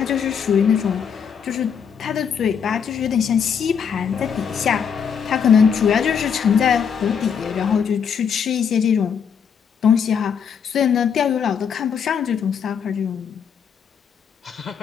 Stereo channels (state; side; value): quieter; right; 7.2 dB